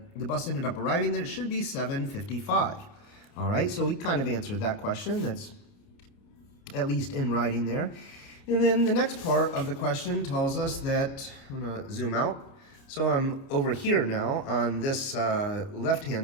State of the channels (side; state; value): right; late; 29 ms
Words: bus ended up arriving, that it should be 7:55. All right, so we kind of answered that question. That's at least in writing there. And then the next part of the question tells us that, I'm going to zoom out. So I'm over here now on this